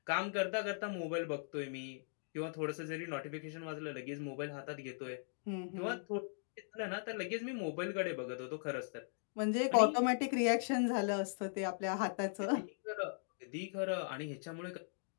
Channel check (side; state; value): right; silent; digital silence